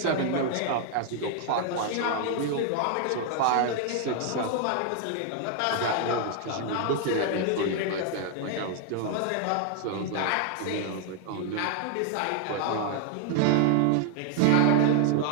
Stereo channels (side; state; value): both; different; correlation 0.00